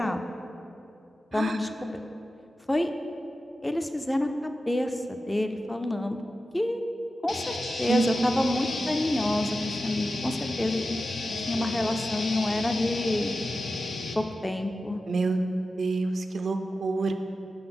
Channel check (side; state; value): both; normal; correlation 0.92